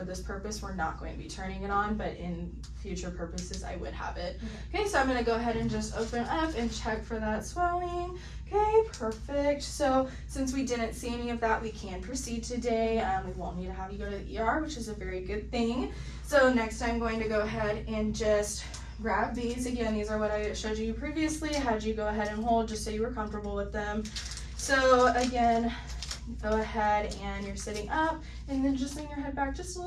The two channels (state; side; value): identical; both; correlation 1.00